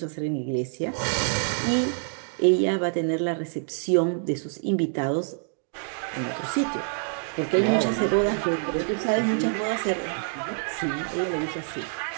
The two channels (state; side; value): silent; left; 61 dB below the other